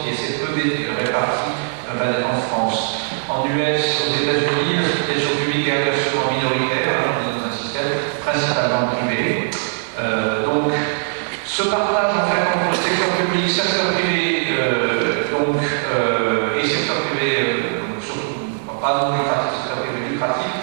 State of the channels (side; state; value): left; silent; 64 dB below the other